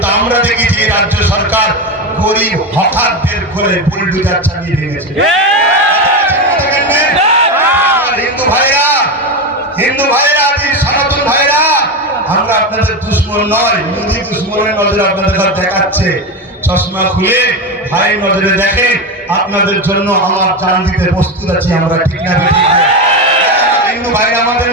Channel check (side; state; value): both; normal; correlation 0.16